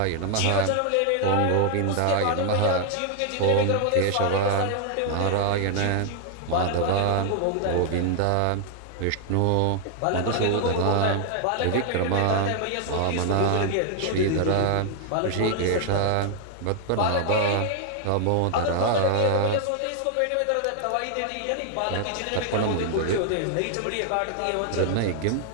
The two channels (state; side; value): different; both; correlation 0.00